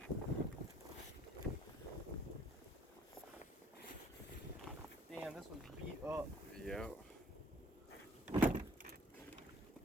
Damn, this was beat up. Yeah.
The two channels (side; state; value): both; normal; correlation 0.59